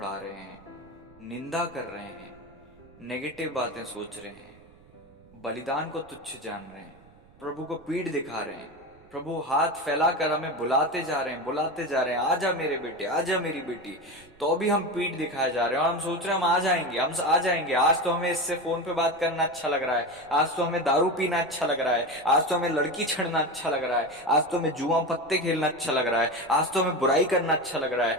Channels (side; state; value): right; noise; rumble, 27 dB below the sound